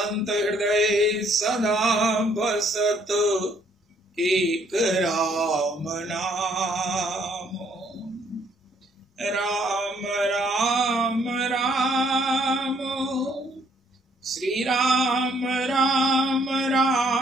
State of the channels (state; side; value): normal; both; correlation 0.66